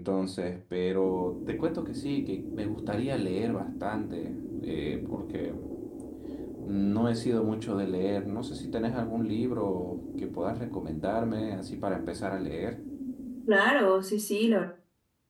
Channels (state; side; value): identical; both; correlation 1.00